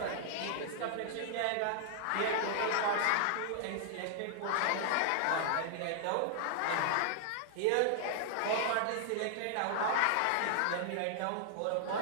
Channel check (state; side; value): different; both; correlation -0.01